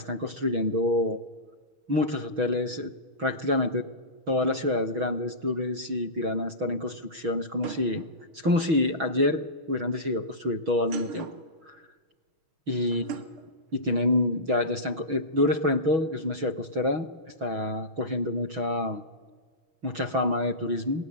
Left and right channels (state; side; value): late; left; 6.2 ms